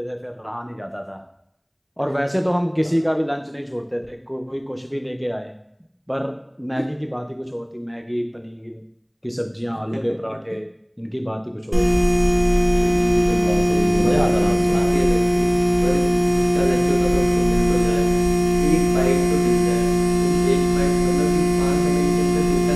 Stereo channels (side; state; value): both; identical; correlation 1.00